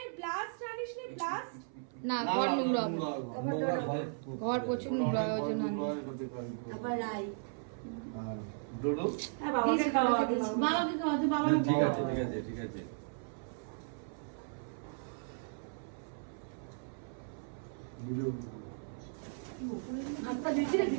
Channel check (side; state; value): left; silent; 54 dB below the other